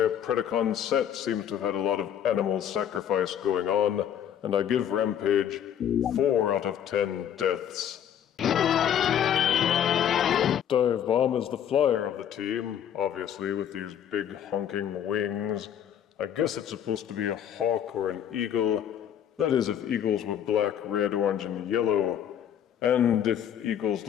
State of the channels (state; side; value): quieter; right; 9.5 dB